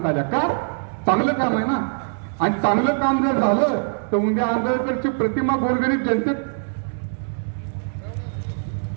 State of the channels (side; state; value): left; silent; 64 dB below the other